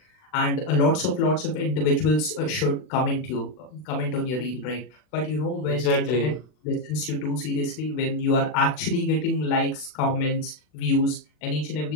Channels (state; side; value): late; right; 40 ms